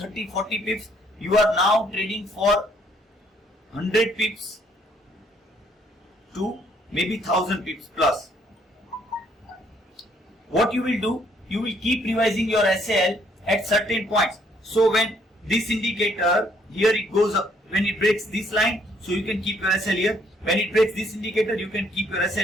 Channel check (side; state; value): both; normal; correlation 0.66